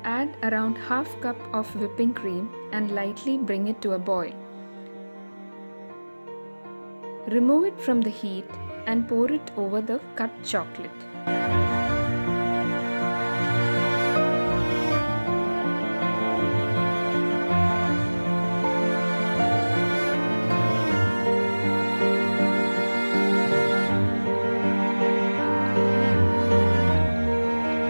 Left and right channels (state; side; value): inverted; both; correlation -1.00